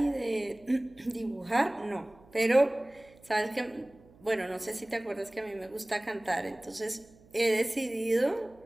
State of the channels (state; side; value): noise; right; hum, 26 dB below the sound